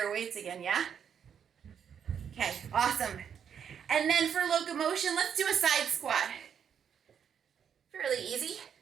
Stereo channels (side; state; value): left; quieter; 7.9 dB